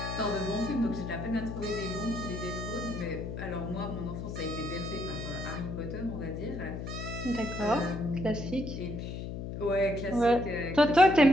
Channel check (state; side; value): noise; left; hum, 6 dB below the sound